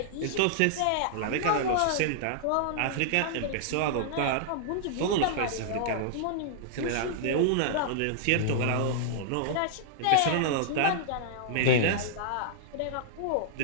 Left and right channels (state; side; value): different; both; correlation -0.02